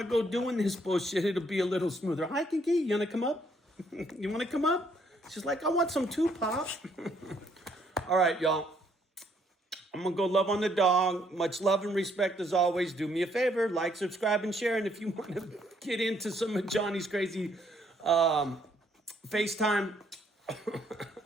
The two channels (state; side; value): normal; both; correlation 0.69